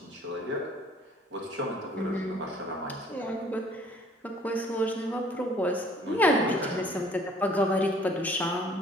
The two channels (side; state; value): both; normal; correlation 0.56